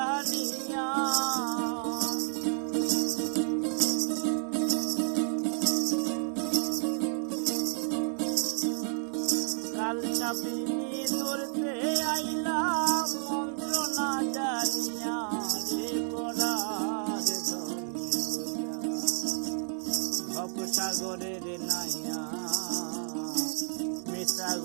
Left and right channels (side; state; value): left; silent; 57 dB below the other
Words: কাল সাবিনী ধরতে আইলাম মন্ত্র না জানিয়া রে পরার ধন লইয়া ভবসাগরের নাইয়া মিশা